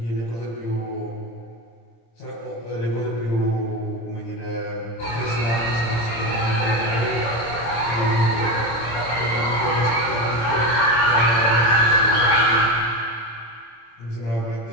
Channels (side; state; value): right; late; 26 ms